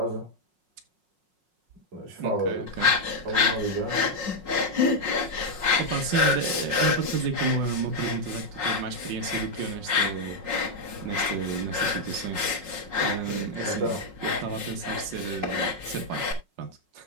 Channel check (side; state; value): left; late; 5.5 ms